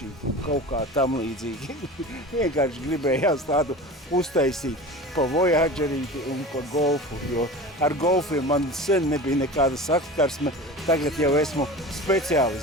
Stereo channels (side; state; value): both; normal; correlation 0.34